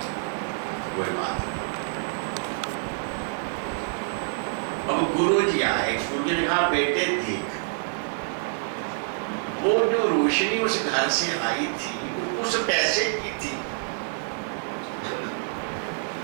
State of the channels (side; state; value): left; silent; digital silence